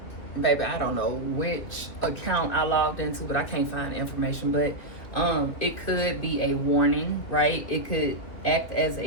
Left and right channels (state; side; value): late; right; 2.8 ms